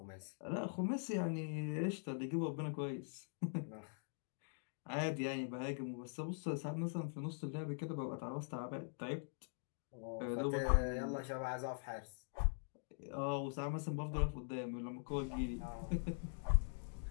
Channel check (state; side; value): silent; right; digital silence